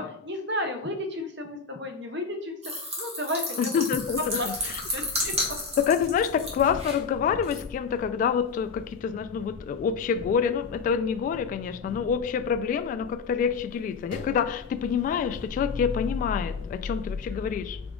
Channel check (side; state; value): right; quieter; 5.6 dB